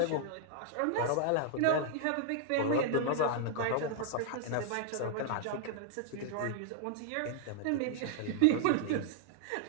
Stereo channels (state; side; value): different; both; correlation 0.00